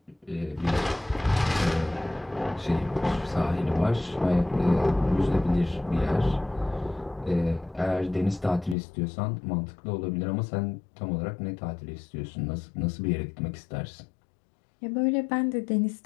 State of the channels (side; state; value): right; drops out; at 8.8 s